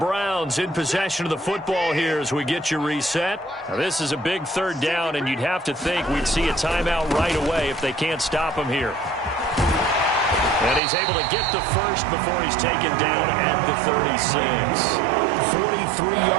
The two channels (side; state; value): left; drops out; at 10.8 s